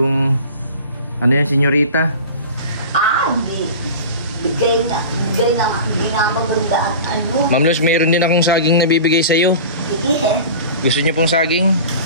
senyorita. Bigay na maganda at Ma'am Luz, mayroon din akong saging na bibigay sa'yo. Sige. Gusto niyo pong saging?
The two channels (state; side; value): inverted; both; correlation -0.36